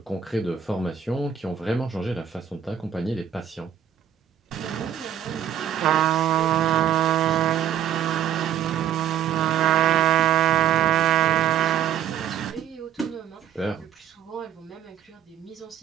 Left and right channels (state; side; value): quieter; left; 9.7 dB